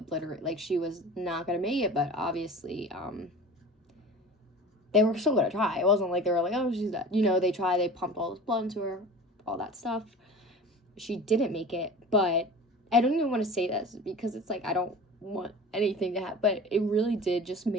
like, she was not gonna make it, but obviously they were still gonna try. It wasn't like they were like, oh, she's dead, you know. They tried, they pumped all this blood into her, all that stuff. She didn't make it, but I don't even want to say this because it's like I don't want anything to happen, but it really did just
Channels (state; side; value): normal; both; correlation 0.38